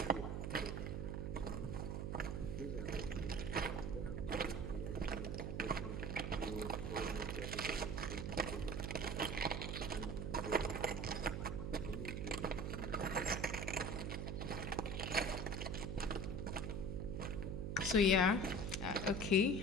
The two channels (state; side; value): noise; right; hum, 2 dB below the sound